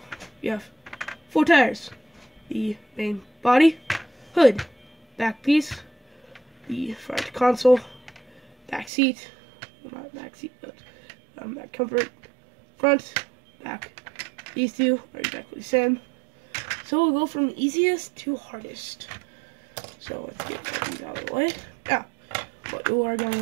you have 4 tires, the main body, hood, back piece, the front console, back seat, well, not back seat, but back comfort, front, back. These two are exactly the same. So we'll go from easiest to hardest. So let's get these out of the way. Now, what you are going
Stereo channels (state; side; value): drops out; left; at 8.9 s